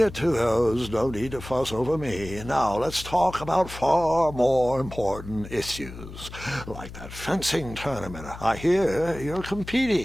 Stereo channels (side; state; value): left; noise; hum, 13 dB below the sound